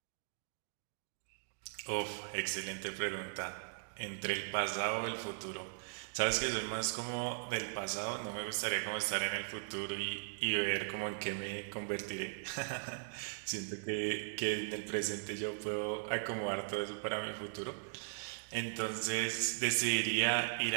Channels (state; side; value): silent; left; digital silence